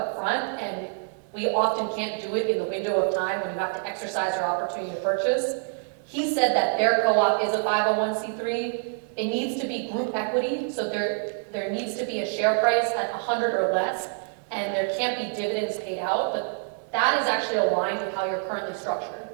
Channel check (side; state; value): left; silent; 61 dB below the other